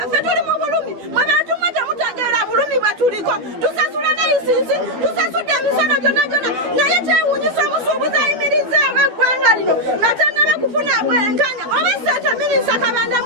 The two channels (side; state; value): left; late; 12 ms